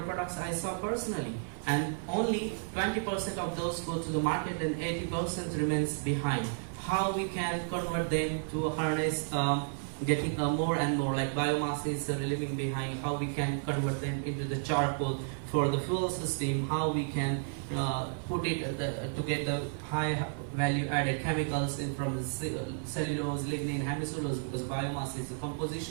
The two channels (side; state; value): left; silent; 56 dB below the other